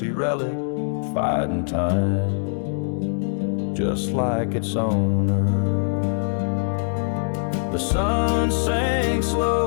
relic fighting time, just like its owner. The sun sinks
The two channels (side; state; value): right; silent; digital silence